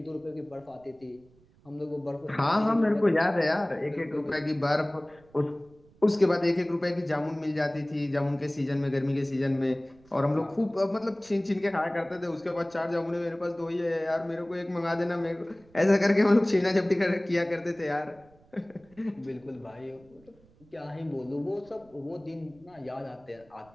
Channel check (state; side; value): noise; right; rumble, 29 dB below the sound